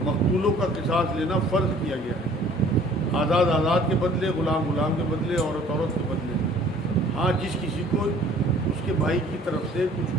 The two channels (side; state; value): both; normal; correlation 0.54